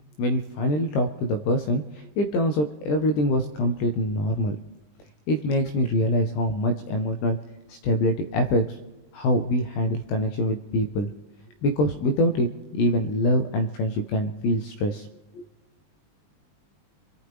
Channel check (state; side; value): late; right; 20 ms